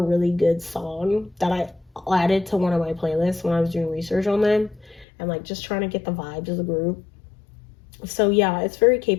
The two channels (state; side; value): drops out; right; at 5.1 s